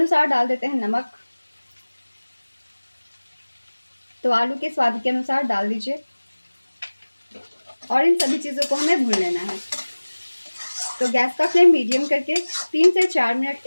डाल देते हैं नमक। तो आलू के स्वाद के अनुसार डाल दीजिए। और इन सभी चीज़ों को हमें भून लेना है। तो गैस का फ्लेम मीडियम करके 3 से 4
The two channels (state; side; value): inverted; both; correlation -1.00